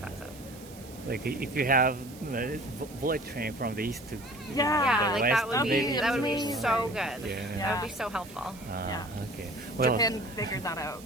Like if you have bullet train from the east to Yeah, the like west, that would maybe- be so good. Yeah. That would be so helpful. Yeah. Okay. Well. Japan figured that out.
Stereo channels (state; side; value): noise; right; hiss, 19 dB below the sound